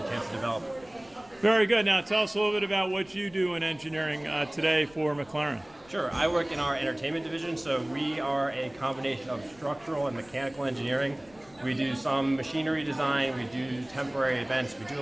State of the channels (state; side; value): noise; left; rumble, 27 dB below the sound